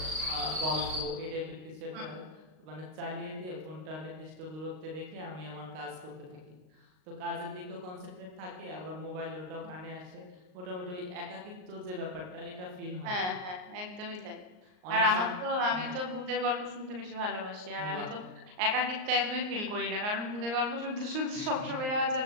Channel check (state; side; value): late; left; 38 ms